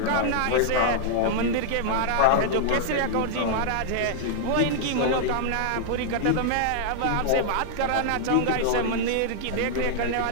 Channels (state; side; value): different; both; correlation -0.01